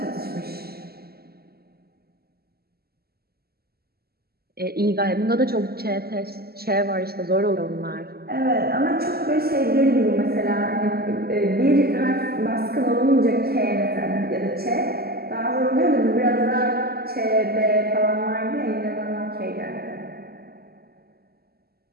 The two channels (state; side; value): late; left; 0.46 ms